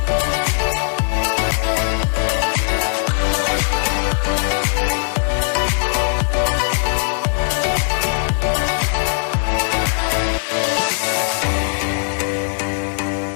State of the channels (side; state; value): right; silent; digital silence